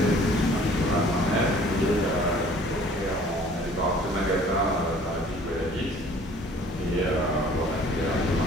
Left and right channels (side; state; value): both; normal; correlation 0.53